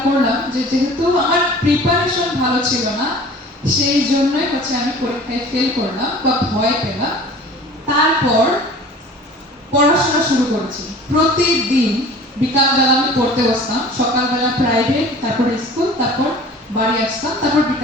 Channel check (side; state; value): both; normal; correlation 0.44